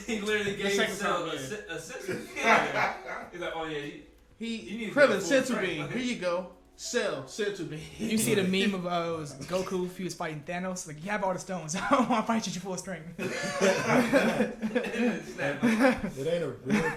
He literally gave Cell a sense. He's like, oh yeah. He Krillin senzu bean. Here you go. Cell senzu bean. You see the meme of it was Goku if he was fighting Thanos. Like, you have all the stones. I don't want to fight you at full strength. It ain't a real.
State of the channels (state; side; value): identical; both; correlation 1.00